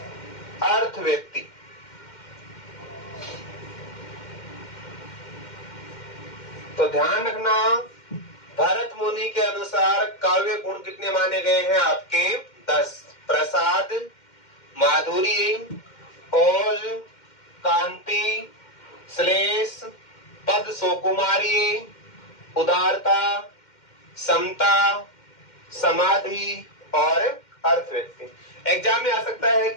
अर्थ व्यक्ति। तो ध्यान रखना, भरत मुनि के अनुसार काव्य गुण कितने माने गए हैं आपके? 10। प्रसाद, माधुर्य, ओज, कांति, श्लेष, पद, सुकुमारी, उदारता, समता, समाधि और अर्थ व्यक्ति। एग्जाम में आ सकता है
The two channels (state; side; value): late; right; 2.1 ms